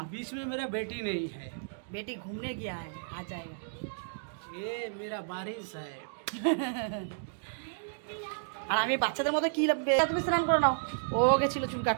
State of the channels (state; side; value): silent; left; digital silence